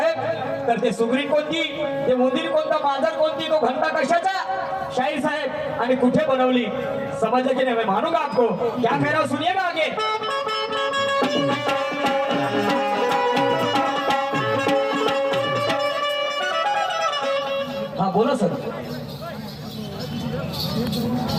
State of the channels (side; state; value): both; identical; correlation 1.00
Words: तर ते सुगरी कोणती, ते उंदीर कोणता, मांजर कोणती, तो घंटा कशाचा शाहीर साहेब आणि कुठे बनवली समजलं की नाही. मैं मानूंगा आपको. क्या कह रहा हूं सुनिएगा आगे. हाँ बोलो सर.